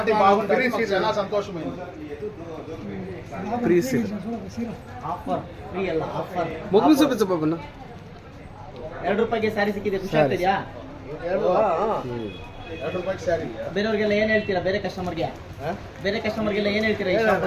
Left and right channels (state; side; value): identical; both; correlation 1.00